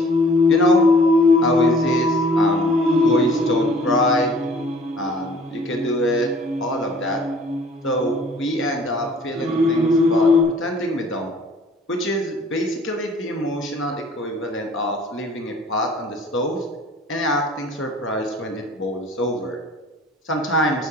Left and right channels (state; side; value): normal; both; correlation 0.53